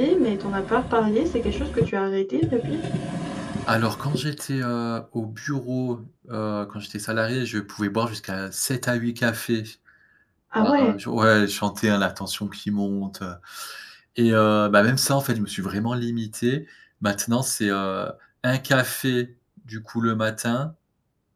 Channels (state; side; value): identical; both; correlation 1.00